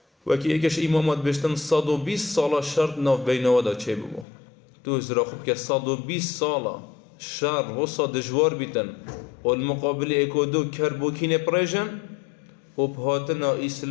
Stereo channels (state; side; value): drops out; right; at 4.2 s